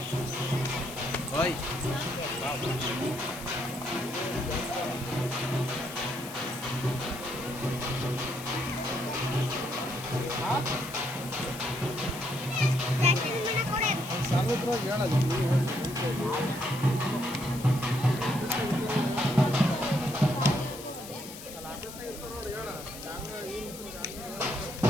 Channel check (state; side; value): noise; left; hiss, 13 dB below the sound